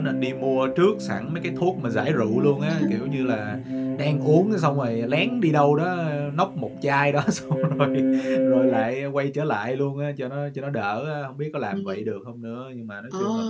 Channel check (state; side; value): identical; both; correlation 1.00